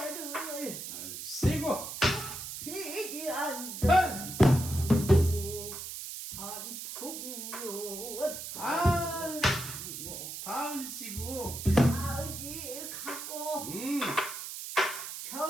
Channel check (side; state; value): right; noise; hiss, 8 dB below the sound